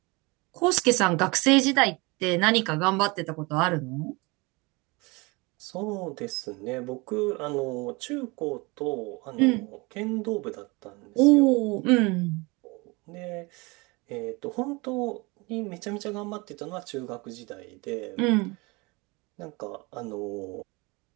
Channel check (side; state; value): left; quieter; 26.0 dB